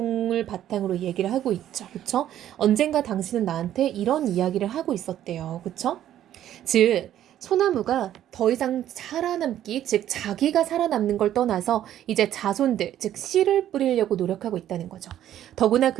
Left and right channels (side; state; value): left; quieter; 11.7 dB